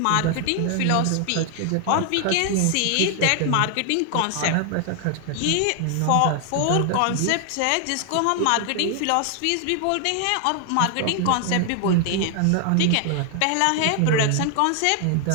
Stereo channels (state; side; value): different; both; correlation 0.00